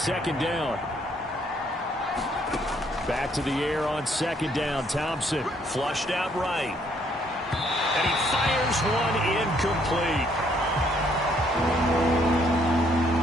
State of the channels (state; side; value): normal; both; correlation 0.68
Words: down. Back to the air on second down. Thompson flushed out right. And he fires one incomplete.